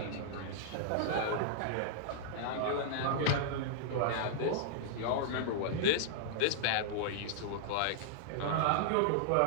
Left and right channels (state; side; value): different; both; correlation -0.02